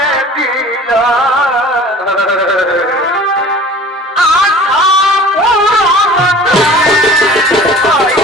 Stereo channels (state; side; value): normal; both; correlation 0.44